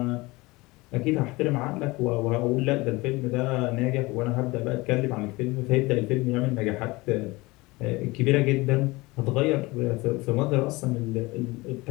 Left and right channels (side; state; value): right; quieter; 22.5 dB